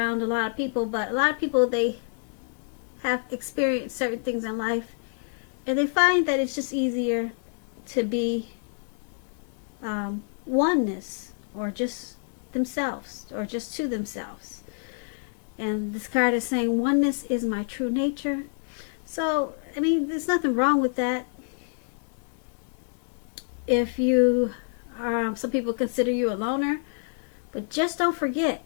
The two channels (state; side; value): silent; right; 60 dB below the other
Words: a lot of people, but a lot of people, they have experienced certain things in life and they find that it's just easier to be oneness, or just themselves, or just to themselves. And this card is saying oneness is my true nature. So I mean, there's nothing wrong with that. If you are, some people consider you a loner, but just don't